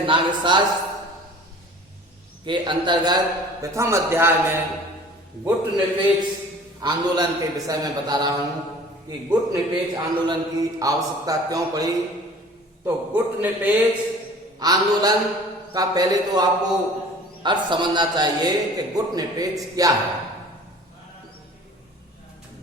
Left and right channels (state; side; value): normal; both; correlation 0.46